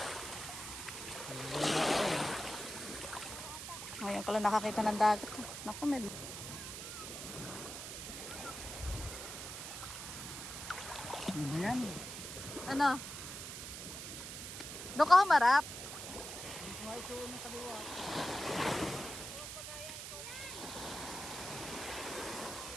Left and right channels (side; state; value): right; noise; hiss, 8 dB below the sound